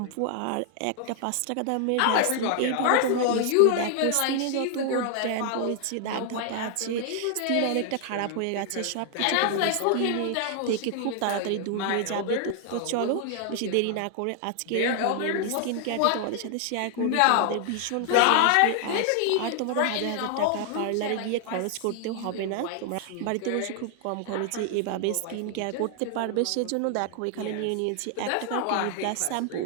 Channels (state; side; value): different; both; correlation 0.00